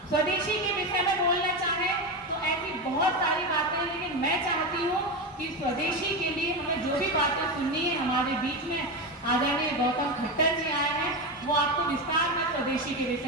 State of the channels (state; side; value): normal; both; correlation 0.16